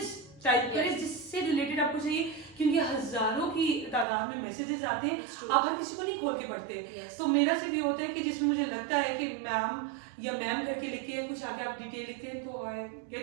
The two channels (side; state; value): left; drops out; at 4.0 s